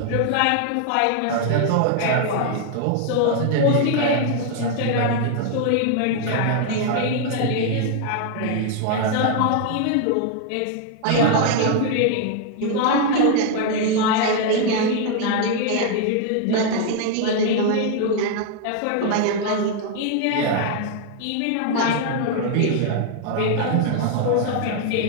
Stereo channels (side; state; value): both; different; correlation 0.00